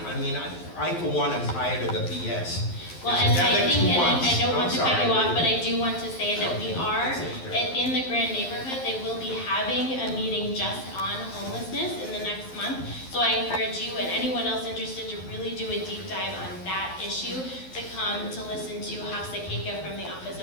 for one am tired of the BS. Well, and I think, and I don't want to cut you off, but I do want to say that we are, in the Grand neighborhood, they will be having a meeting just on homelessness in the next month. So I encourage you and anyone else interested to really do a deep dive on that issue, to come to listen to Hafsa Keika from the Office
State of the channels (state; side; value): late; right; 11 ms